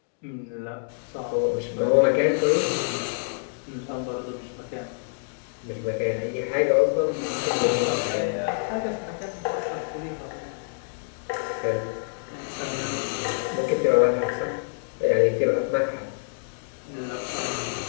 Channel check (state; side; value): silent; right; digital silence